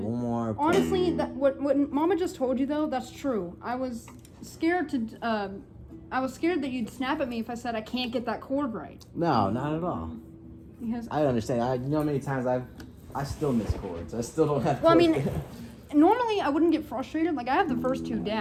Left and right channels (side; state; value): both; identical; correlation 1.00